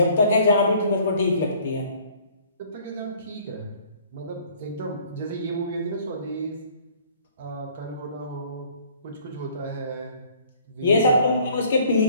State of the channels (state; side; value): inverted; both; correlation -0.56